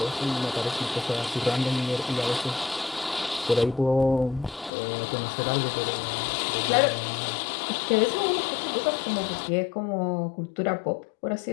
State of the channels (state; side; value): drops out; right; at 4.7 s